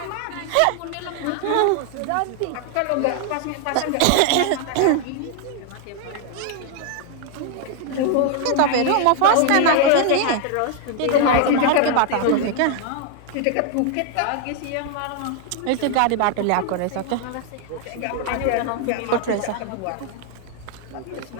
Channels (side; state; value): both; different; correlation 0.00